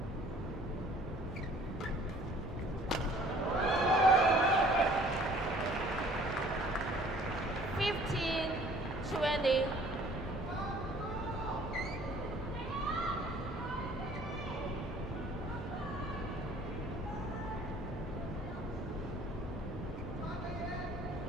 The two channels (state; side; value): normal; both; correlation 0.54